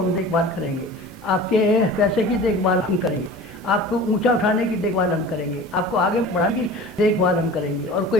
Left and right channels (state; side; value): normal; both; correlation 0.39